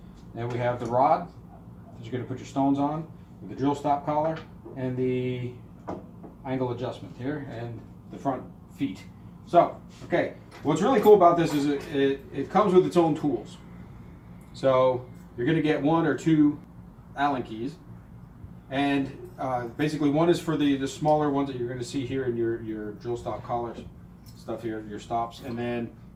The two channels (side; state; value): both; identical; correlation 1.00